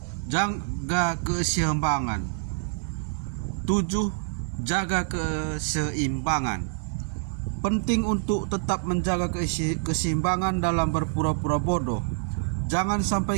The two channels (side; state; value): left; silent; 56 dB below the other